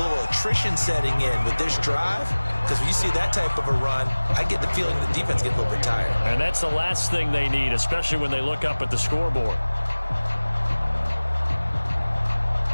attrition setting in with this drive, because when you see that type of a run, I get the feeling the defense gets a little bit tired. And that's the last thing they need, especially when they look up at the scoreboard.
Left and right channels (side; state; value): both; inverted; correlation -1.00